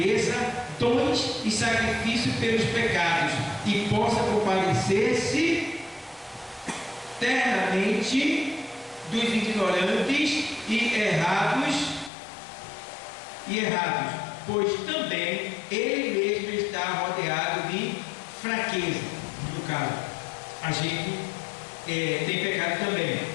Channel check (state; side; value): drops out; right; at 12.1 s